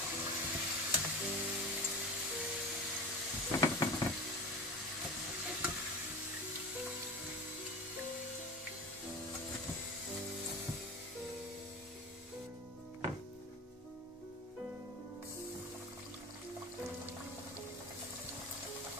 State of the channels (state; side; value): normal; both; correlation 0.31